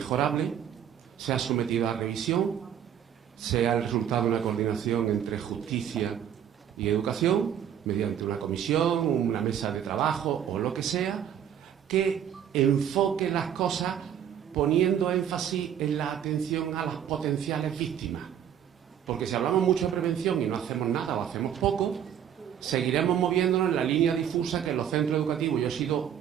se ha sometido a revisión, sea el resultado de una coordinación entre justicia y educación, mediante una comisión, una mesa de trabajo o lo que sea, que enfoque las cosas poniendo énfasis en la atención a las potenciales víctimas. Porque si hablamos mucho de prevención y no hacemos nada o hacemos poco, seguiremos moviéndonos en la línea difusa que en los centros educativos, yo he sido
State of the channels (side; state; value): left; quieter; 9.4 dB